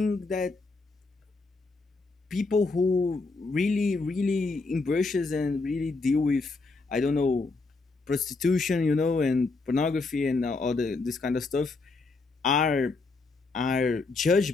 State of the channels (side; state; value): right; quieter; 3.8 dB